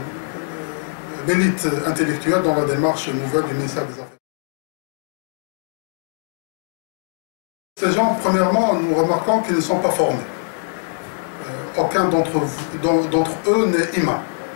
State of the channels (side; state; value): right; silent; digital silence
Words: l'élite intellectuelle dans la démarche nouvelle du ministère des Affaires. Ces gens, premièrement, nous remarquons qu'ils ne sont pas formés. Aucun d'entre eux n'est imam.